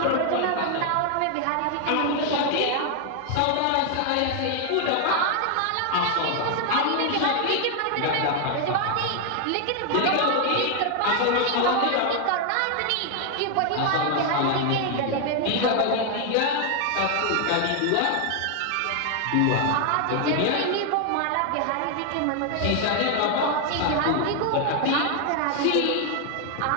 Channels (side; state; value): both; different; correlation 0.00